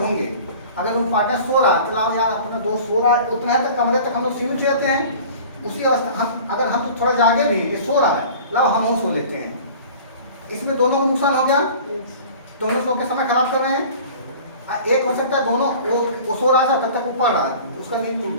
अगर रूम पार्टनर सो रहा है, चलाओ यार अपना दोस्त सो रहा है, उतना तक कमरे तक हम लोग सीमित रहते हैं। उसी अवस्था अगर हम तो थोड़ा जागे भी, ये सो रहा है, लाओ हम सो लेते हैं। इसमें दोनों को नुकसान हो गया, दोनों सो के समय खराब कर रहे हैं। एक हो सकता है दोनों, वो सो रहा था तब तक वो पढ़ रहा है, उसका नींद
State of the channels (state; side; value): inverted; both; correlation -0.43